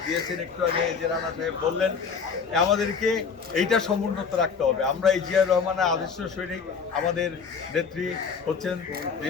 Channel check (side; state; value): right; quieter; 5.8 dB